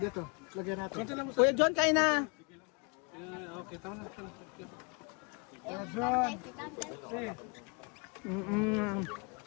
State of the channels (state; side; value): quieter; right; 33.3 dB